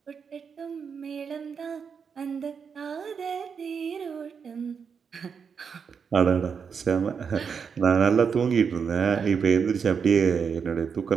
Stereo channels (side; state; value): left; quieter; 6.3 dB